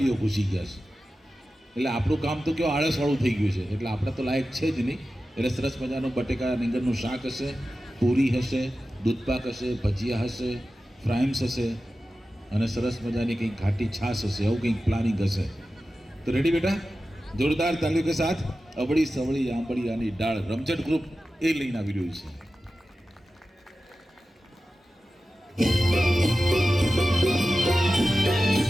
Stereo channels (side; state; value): both; normal; correlation 0.94